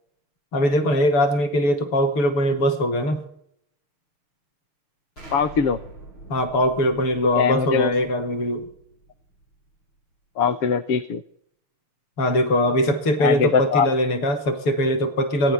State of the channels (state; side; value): late; right; 6.9 ms